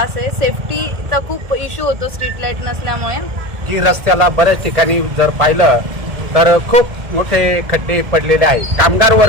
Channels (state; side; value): late; left; 1.8 ms